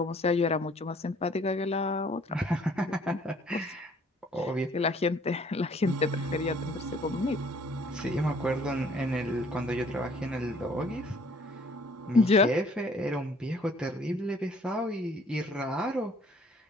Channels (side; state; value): both; normal; correlation 0.58